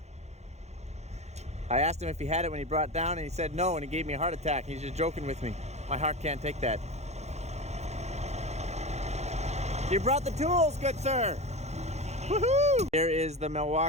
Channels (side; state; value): left; late; 0.32 ms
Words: I asked him if he had it when he brought it down, and he said no, and he gave me a heart attack. He's just joking with me. My heart can't take that. You brought the tools, good sir. Woohoo! Here is the